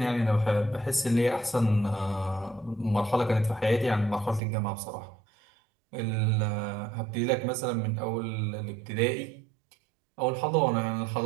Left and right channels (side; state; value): left; drops out; at 4.4 s